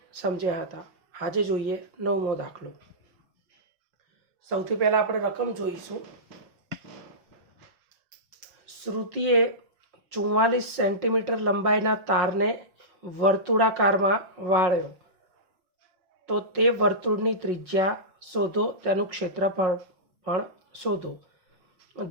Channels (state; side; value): late; left; 5.5 ms